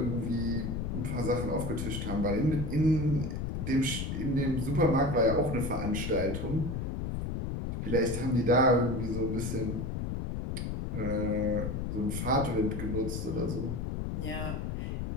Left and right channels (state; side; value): noise; left; rumble, 3 dB below the sound